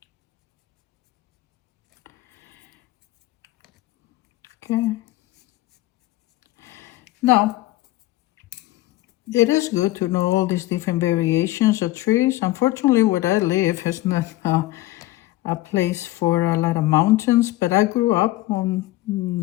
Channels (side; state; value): right; quieter; 17.4 dB